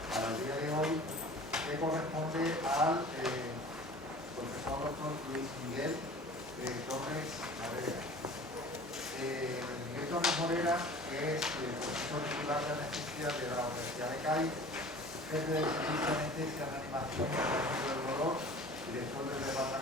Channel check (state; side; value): normal; both; correlation 0.43